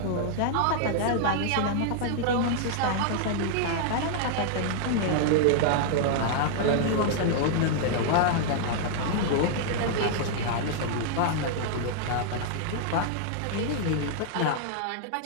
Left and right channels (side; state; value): both; different; correlation -0.01